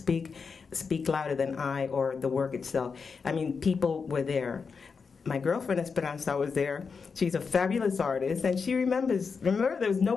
Louder Than I," or the work itself. I mean, people were there. My girlfriend Esperanza was there. She's a fabulous artist, and she remember there was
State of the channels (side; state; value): right; quieter; 5.4 dB